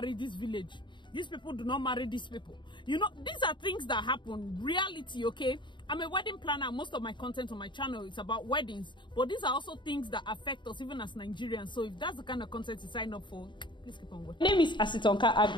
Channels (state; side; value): late; right; 0.23 ms